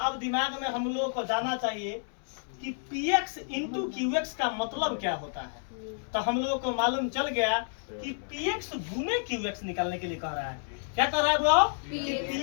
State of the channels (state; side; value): silent; right; digital silence